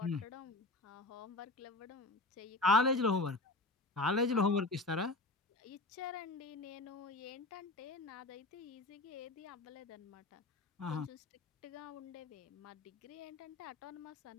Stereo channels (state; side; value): quieter; right; 3.0 dB